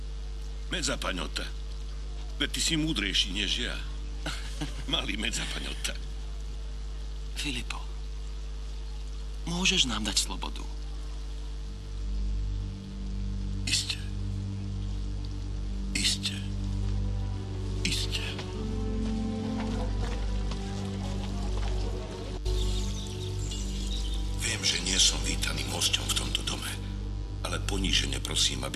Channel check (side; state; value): both; identical; correlation 1.00